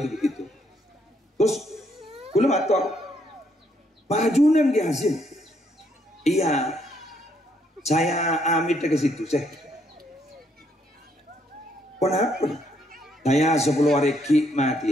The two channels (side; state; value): both; normal; correlation 0.72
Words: itu begitu. Terus belum atur bajunan dia hasil. Iya, saya amit ke situ. Kenapa? Saya 10 hari